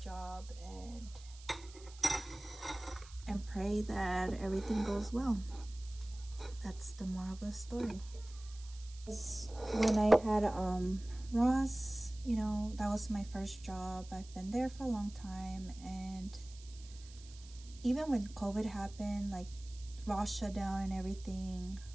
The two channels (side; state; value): right; noise; hiss, 20 dB below the sound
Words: and pray that everything goes well. That's the moral of the story. When I had Ross, you know, that was my first job. I've been there for a long time, and even when COVID happened, like Ross shut down and everything